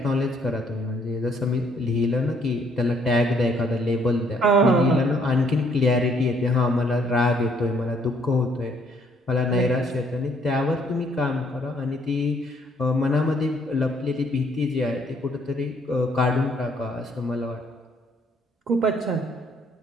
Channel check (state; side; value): normal; both; correlation 0.66